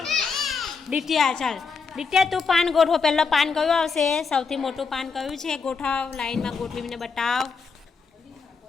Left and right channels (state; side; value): quieter; right; 5.1 dB